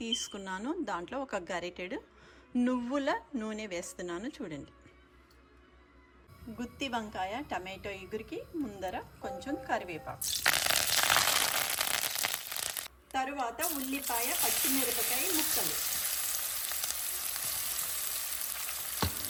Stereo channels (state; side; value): identical; both; correlation 1.00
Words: తీసుకున్నాను. దాంట్లో ఒక గరిటెడు నువ్వుల నూనె వేస్తున్నాను చూడండి. గుత్తి వంకాయ టమాటో ఇగురికి ముందర కొంచెం కరివేపాకు, తరువాత ఉల్లిపాయ పచ్చిమిరపకాయ ముక్కలు,